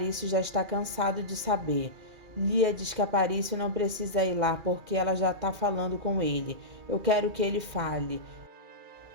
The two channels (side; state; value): left; late; 2.4 ms